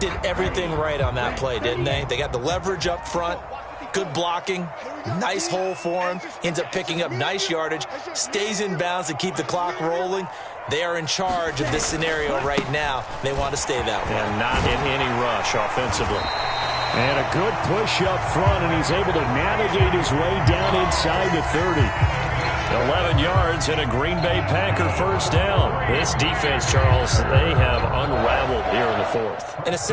everything right on that play, didn't they? They got the leverage up front, good blocking, nice hole for him, ends up picking up nice yardage, stays in bounds to keep the clock rolling. They are in charge of this scenario right now. They want to stay that way. And not in any rush offensively. And a good push up front, and he's able to navigate his way down inside the 30. 11 yards and a Green Bay Packer 1st down. This defense, Charles, they have unraveled here in the 4th. In a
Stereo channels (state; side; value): identical; both; correlation 1.00